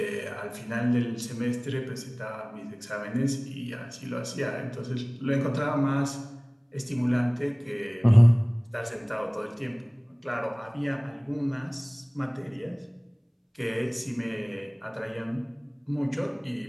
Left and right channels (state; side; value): identical; both; correlation 1.00